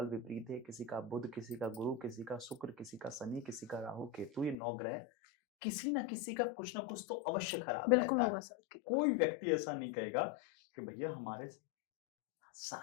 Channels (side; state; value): right; drops out; at 4.5 s